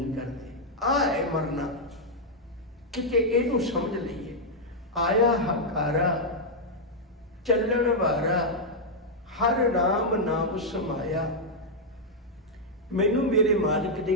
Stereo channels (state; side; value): normal; both; correlation -0.04